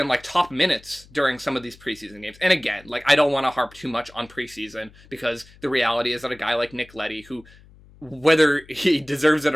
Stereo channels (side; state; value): left; noise; hum, 25 dB below the sound